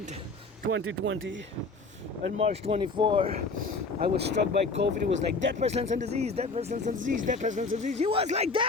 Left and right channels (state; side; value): quieter; right; 3.7 dB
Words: 2020 and March 24, I was struck by COVID. It was like death, pestilence, and disease, death, pestilence, and disease, death, pestilence, and disease. It was like